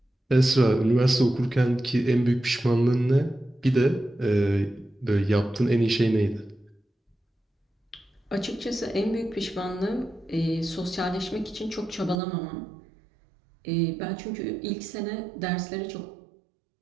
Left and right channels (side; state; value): left; drops out; at 12.2 s